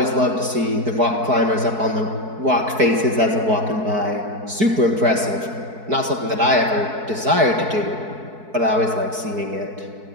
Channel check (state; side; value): late; left; 4.6 ms